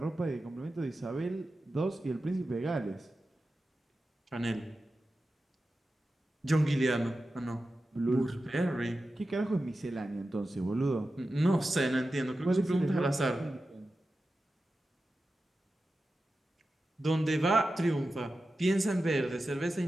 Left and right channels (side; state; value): both; normal; correlation 0.93